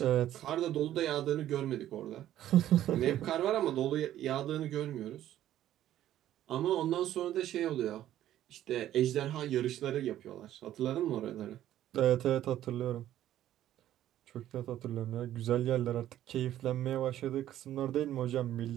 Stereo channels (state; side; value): quieter; left; 12.5 dB